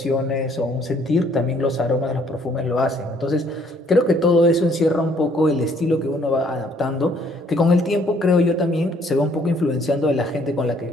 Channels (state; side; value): normal; both; correlation 0.63